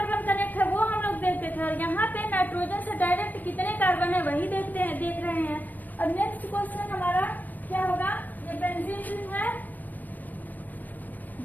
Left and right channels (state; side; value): late; right; 0.083 ms